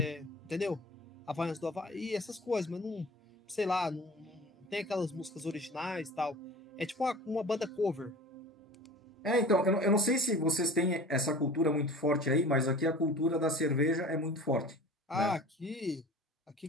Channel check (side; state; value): both; normal; correlation 0.41